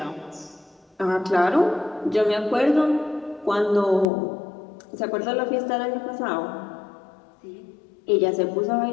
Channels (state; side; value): drops out; right; at 4.0 s